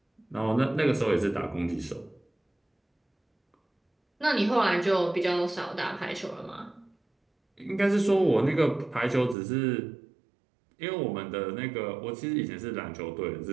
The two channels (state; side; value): drops out; left; at 9.3 s